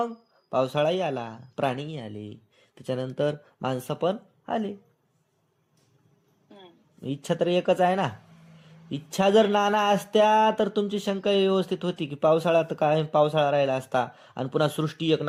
पावसाळाही आला, प्राणीही आले, त्याच्यानंतर माणसं पण आले. इच्छा तर एकच आहे ना. इच्छा जर नाना असत्या तर तुमची शंका व्यवस्थित होती की पावसाळा तर काय, पावसाळा राहिला असता, आणि पुन्हा सृष्टी एक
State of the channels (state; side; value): identical; both; correlation 1.00